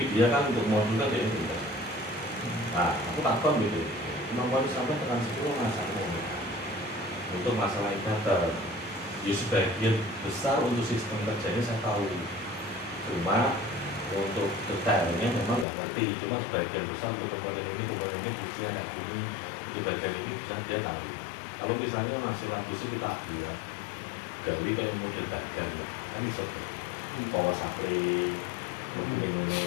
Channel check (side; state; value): right; drops out; at 15.7 s